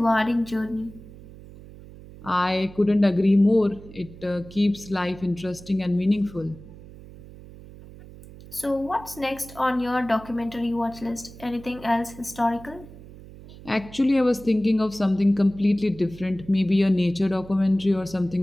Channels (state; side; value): noise; right; hum, 18 dB below the sound